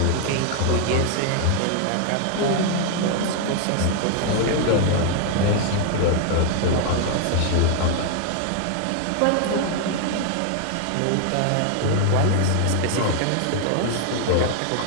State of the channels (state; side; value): different; both; correlation 0.00